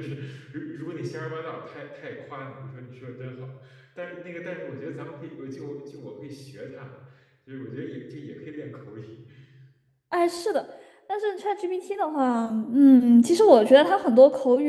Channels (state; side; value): identical; both; correlation 1.00